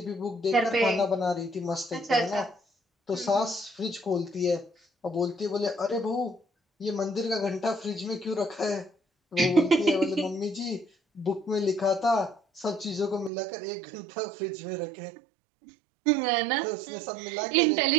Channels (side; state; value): left; drops out; at 13.3 s